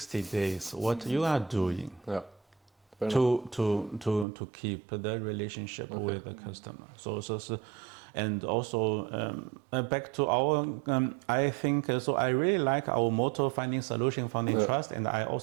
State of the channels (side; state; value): left; drops out; at 4.2 s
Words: days, what you are doing to keep the relationship with the customer. So and also back to our, I think, so I really like our motto, finding solution, founding trust. And I